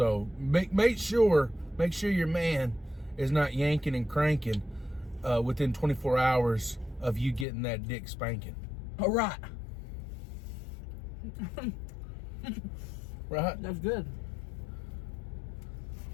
make sure your man is not yanking and cranking within 24 hours of you getting that dick spanking. All right. Right? That's good.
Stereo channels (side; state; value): right; drops out; at 7.5 s